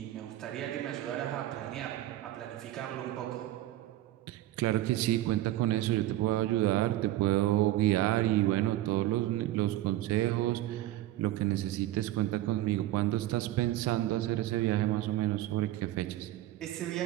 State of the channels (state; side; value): quieter; left; 14.8 dB